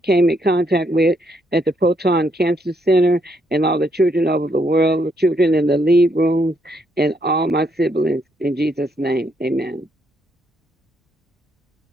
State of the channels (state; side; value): normal; both; correlation 0.74